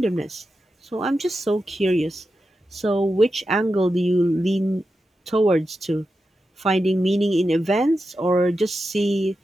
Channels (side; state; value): both; normal; correlation 0.89